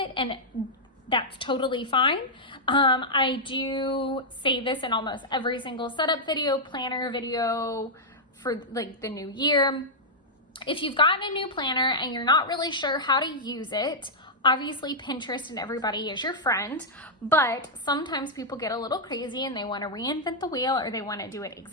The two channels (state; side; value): normal; both; correlation -0.06